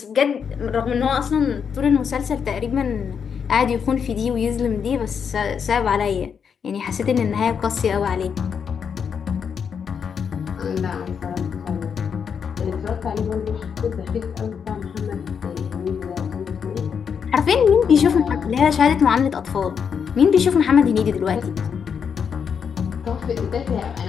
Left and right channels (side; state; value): right; quieter; 6.9 dB